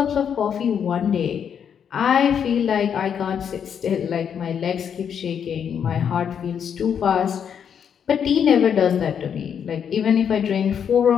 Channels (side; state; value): right; quieter; 7.9 dB